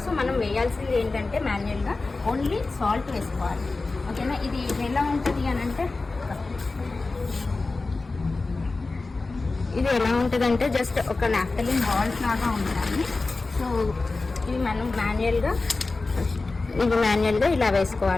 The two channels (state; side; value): quieter; right; 3.6 dB